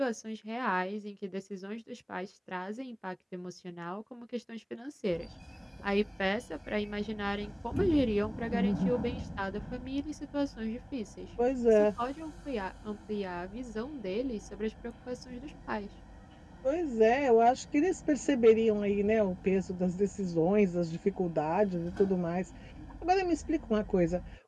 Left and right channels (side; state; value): both; identical; correlation 1.00